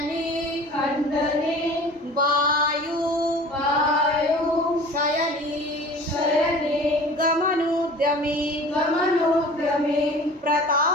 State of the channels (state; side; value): normal; both; correlation 0.43